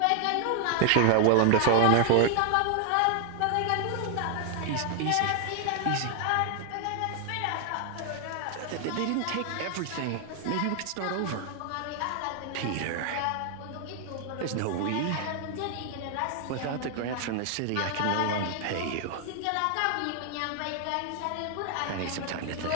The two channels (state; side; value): different; both; correlation 0.00